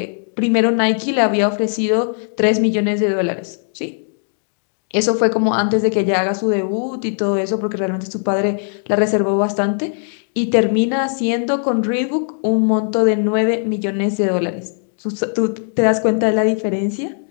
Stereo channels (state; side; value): silent; right; 58 dB below the other